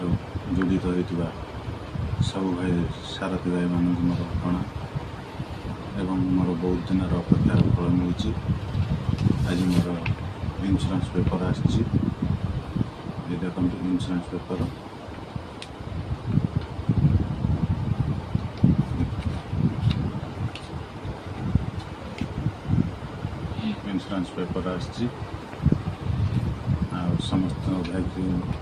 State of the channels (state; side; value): identical; both; correlation 1.00